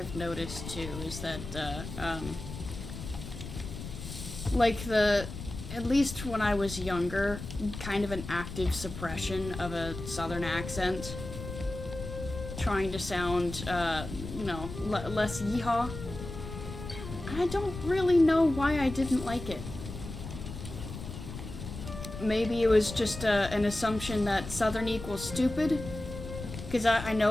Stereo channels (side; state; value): left; noise; rumble, 9 dB below the sound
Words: noticed too is that like at least when I was younger, kind of an active suppression of a southern accent, trying to sound less yeehaw. I don't really know why I didn't like it. Maybe it was just an assumption that southern equals stupid. Because I